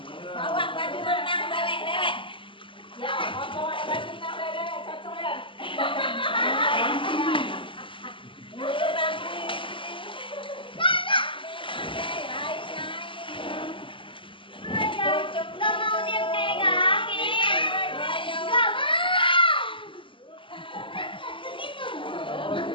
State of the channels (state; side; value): late; right; 0.25 ms